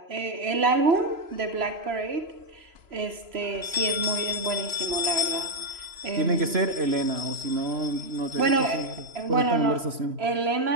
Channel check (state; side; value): late; left; 3.0 ms